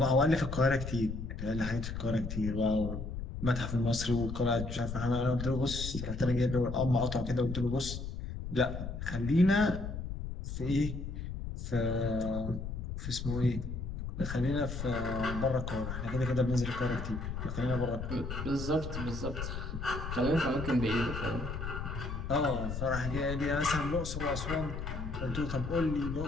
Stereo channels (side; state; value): left; noise; rumble, 6 dB below the sound